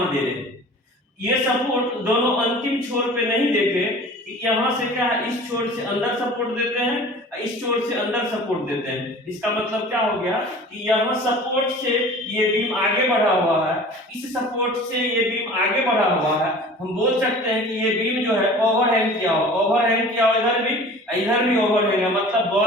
दे रहे हैं। ये सपोर्ट दोनों अंतिम छोर पे नहीं देके, यहाँ से क्या है, इस छोर से अंदर सपोर्ट देते हैं, इस छोर से अंदर सपोर्ट देते हैं। इसका मतलब क्या हो गया कि यहाँ सपोर्ट से ये बीम आगे बढ़ा हुआ है, इस सपोर्ट से ये बीम आगे बढ़ा हुआ है। हम बोल सकते हैं कि ये बीम जो है ओवरहैंग किया हुआ, ओवरहैंग किया हुआ, इधर भी ओवरहैंग है, मतलब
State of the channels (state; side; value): normal; both; correlation 0.43